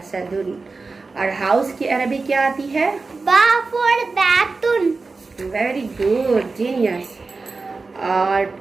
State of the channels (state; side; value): quieter; left; 4.0 dB